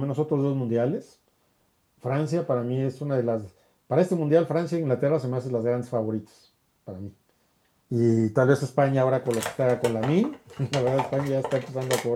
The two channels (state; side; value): identical; both; correlation 1.00